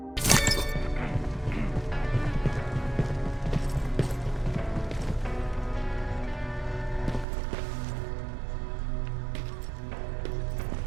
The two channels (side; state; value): left; drops out; at 7.2 s